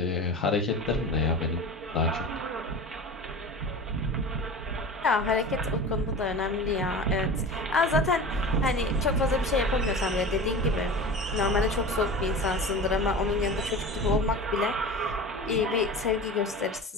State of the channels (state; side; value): normal; both; correlation 0.33